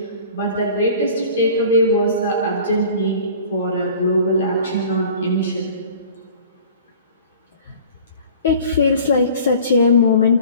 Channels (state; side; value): inverted; both; correlation -0.46